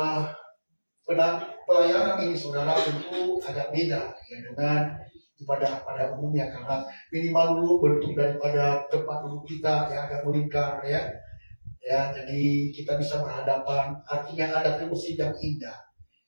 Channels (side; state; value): both; inverted; correlation -1.00